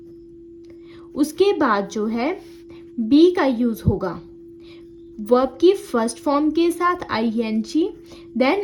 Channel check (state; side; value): identical; both; correlation 1.00